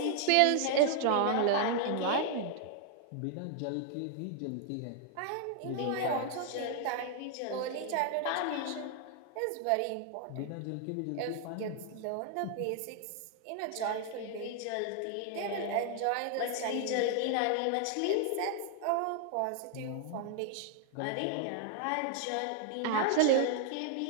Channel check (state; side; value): different; both; correlation 0.00